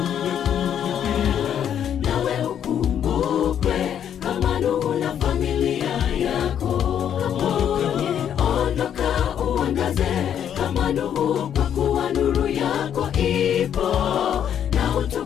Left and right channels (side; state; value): right; quieter; 9.3 dB